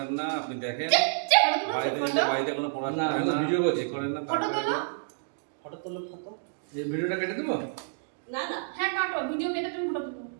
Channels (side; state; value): left; silent; digital silence